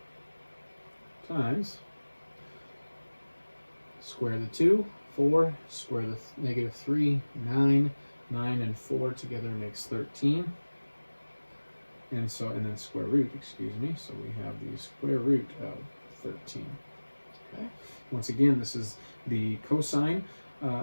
times square the 2, 4, square the -3, 9, 9 and 4 together makes 13. And so, and then square root, excuse me, so we have the square root of 13. Okay. Once again, this is the cosine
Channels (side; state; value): both; inverted; correlation -1.00